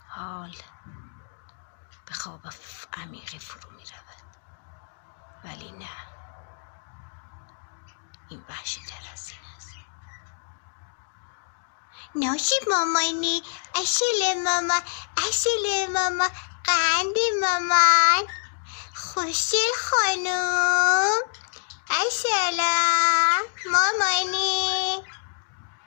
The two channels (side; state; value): right; silent; digital silence